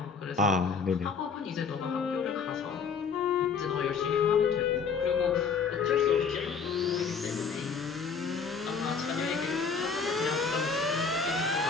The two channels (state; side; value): quieter; right; 5.6 dB